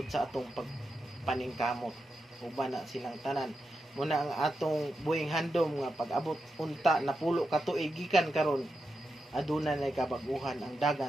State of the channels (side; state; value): both; normal; correlation 0.88